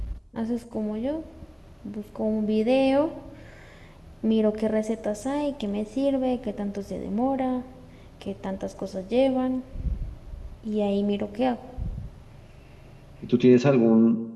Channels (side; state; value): both; identical; correlation 1.00